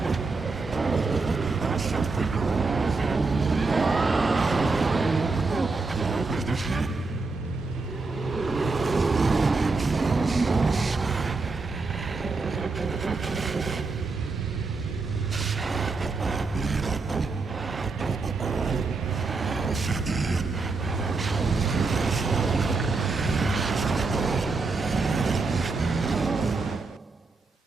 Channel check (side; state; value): left; quieter; 3.9 dB